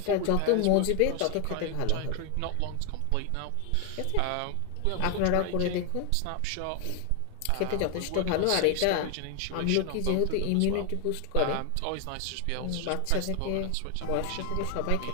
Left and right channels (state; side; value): different; both; correlation 0.01